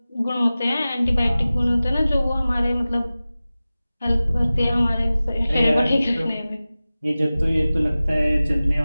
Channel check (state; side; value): inverted; both; correlation -0.97